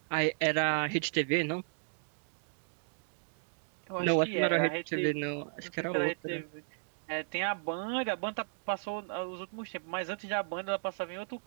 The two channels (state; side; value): silent; left; digital silence